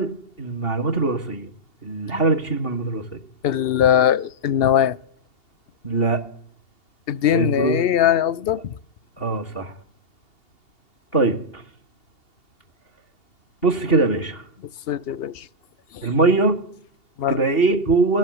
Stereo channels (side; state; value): right; late; 2.8 ms